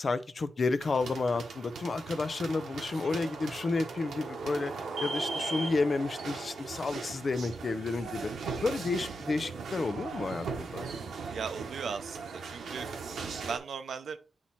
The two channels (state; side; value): normal; both; correlation 0.87